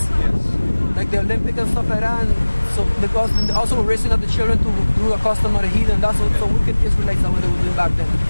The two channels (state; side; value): inverted; both; correlation -1.00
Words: like the Olympic and stuff like that. And so because also we're raising up the children to do a custom of the heathen. That's what so wicked Israelites that what they were doing back then.